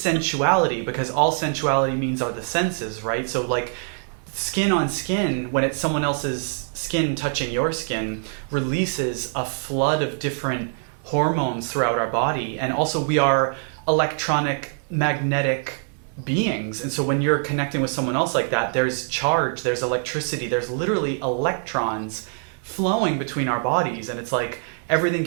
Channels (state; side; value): silent; left; 63 dB below the other